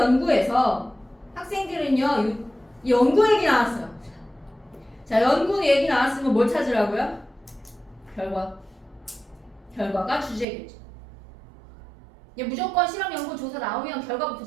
학생들은요, 연구 얘기 나왔어요. 자, 연구 얘기 나왔으면 뭘 찾으라고요? 결과가 주제겠죠. 무조건 실험 연구 조사 나오면 결과부터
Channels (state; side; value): drops out; left; at 10.5 s